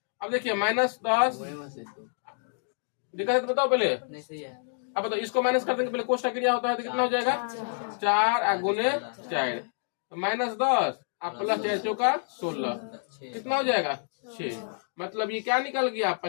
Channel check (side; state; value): right; silent; digital silence